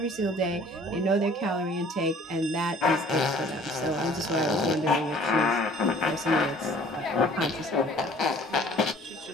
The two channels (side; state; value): both; normal; correlation 0.53